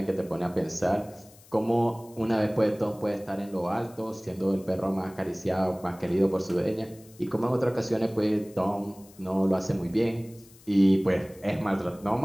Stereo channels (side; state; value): left; noise; hiss, 25 dB below the sound